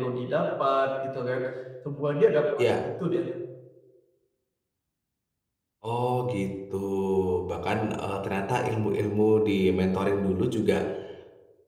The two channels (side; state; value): both; identical; correlation 1.00